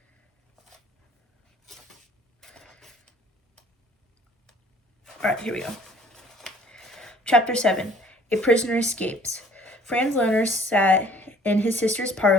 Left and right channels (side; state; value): both; normal; correlation 0.55